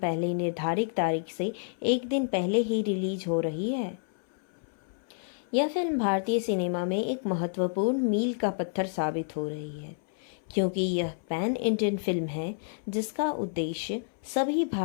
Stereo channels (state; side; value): silent; right; 58 dB below the other